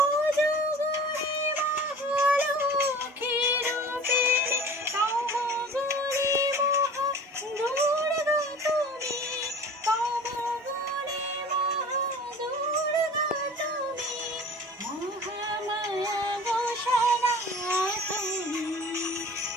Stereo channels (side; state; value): both; normal; correlation 0.42